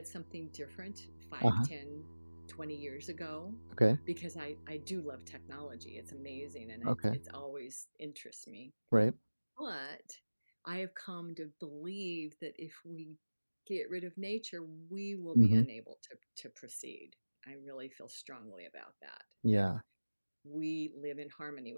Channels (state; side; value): inverted; both; correlation -1.00